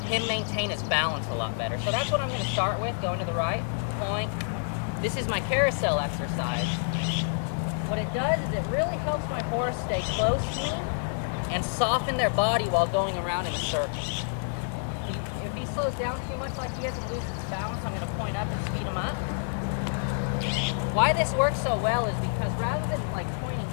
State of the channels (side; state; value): right; silent; digital silence